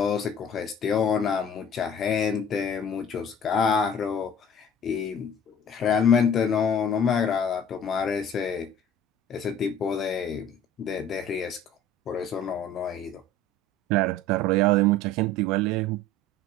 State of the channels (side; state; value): both; normal; correlation 0.46